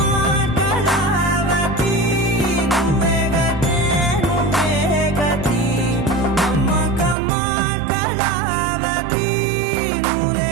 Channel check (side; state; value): left; drops out; at 7.2 s